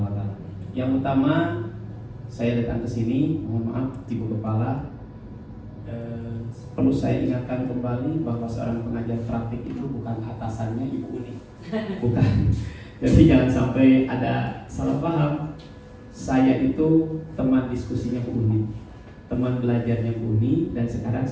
wa Ta'ala. Yang utama, saya datang ke sini, mohon maaf Ibu Kepala, perlu saya ingatkan kembali bahwa seorang pengajar praktik itu bukan atasannya Ibu Uni, bukan. Jadi jangan sampai ada salah paham. Saya itu teman diskusinya Bu Uni, teman belajarnya Bu Uni, dan sekarang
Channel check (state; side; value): identical; both; correlation 1.00